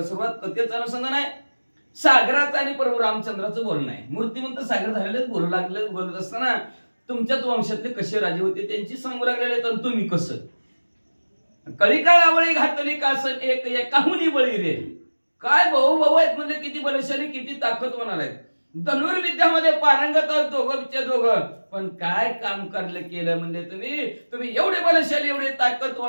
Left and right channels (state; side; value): inverted; both; correlation -1.00